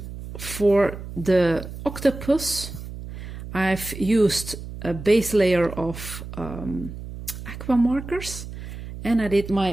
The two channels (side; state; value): right; noise; hum, 11 dB below the sound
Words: For the octopus, I've used a base layer of aqua markers, and I did